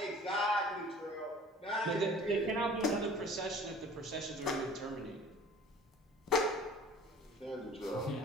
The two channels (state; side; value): normal; both; correlation 0.47